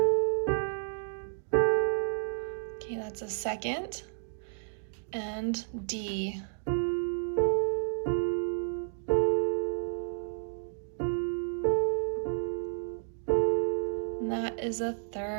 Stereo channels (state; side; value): silent; left; digital silence